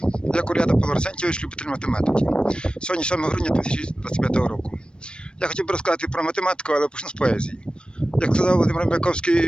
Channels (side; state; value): right; late; 0.054 ms